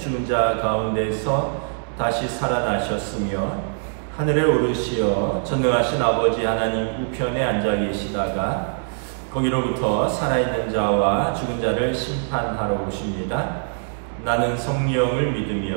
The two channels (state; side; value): silent; left; digital silence